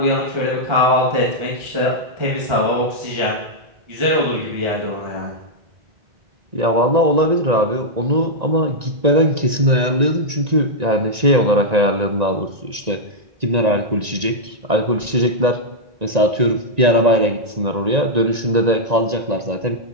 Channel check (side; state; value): left; late; 1.9 ms